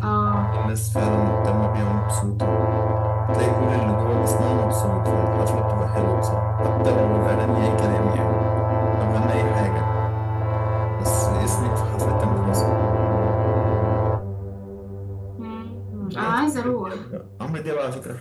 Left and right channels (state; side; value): identical; both; correlation 1.00